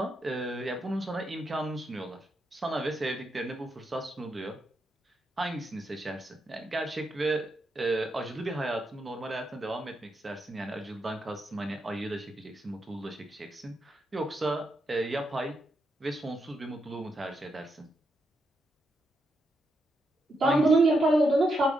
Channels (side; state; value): both; normal; correlation 0.82